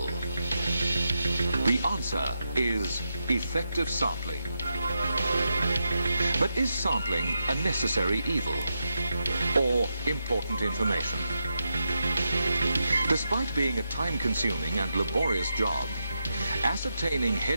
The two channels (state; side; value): inverted; both; correlation -0.85